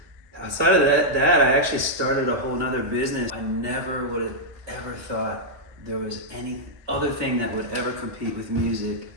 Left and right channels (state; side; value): late; left; 1.2 ms